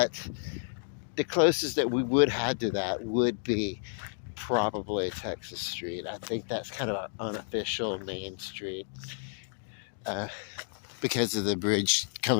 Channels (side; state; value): right; silent; digital silence